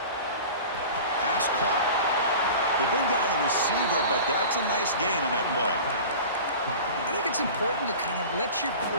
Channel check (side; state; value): both; inverted; correlation -0.37